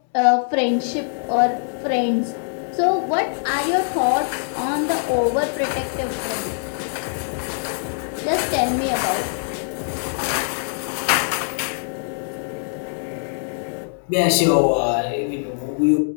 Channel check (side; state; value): right; silent; digital silence